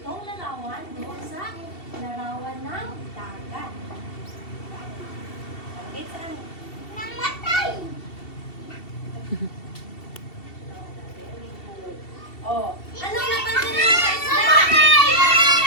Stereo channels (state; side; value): late; right; 2.7 ms